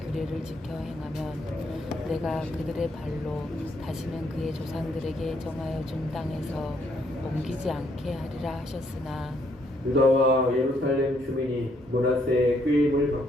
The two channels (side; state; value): both; normal; correlation 0.71